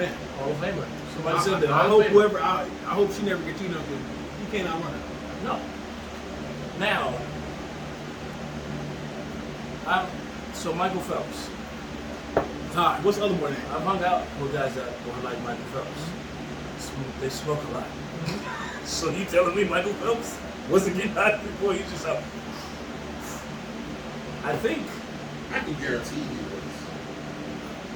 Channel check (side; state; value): both; identical; correlation 1.00